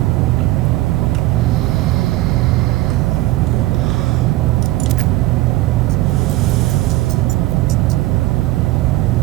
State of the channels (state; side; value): quieter; left; 17.9 dB